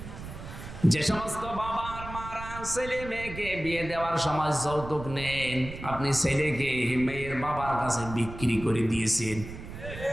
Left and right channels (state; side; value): noise; right; rumble, 11 dB below the sound